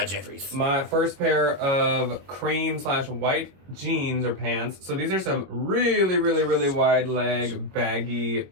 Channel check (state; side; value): late; left; 21 ms